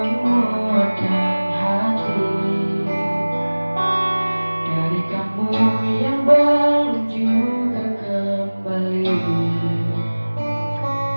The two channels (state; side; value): inverted; both; correlation -1.00